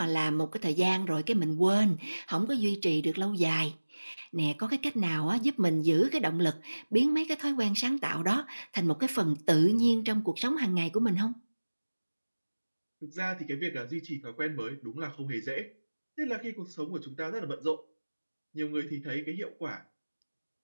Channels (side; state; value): both; inverted; correlation -1.00